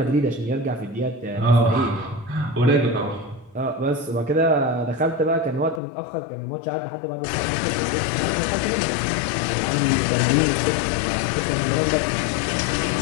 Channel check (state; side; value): drops out; right; at 5.8 s